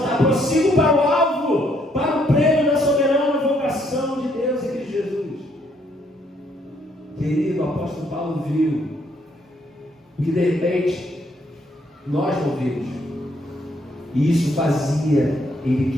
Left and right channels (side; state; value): both; normal; correlation 0.70